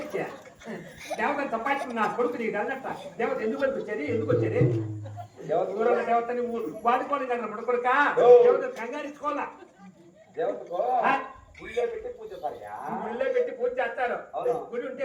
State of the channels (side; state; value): both; identical; correlation 1.00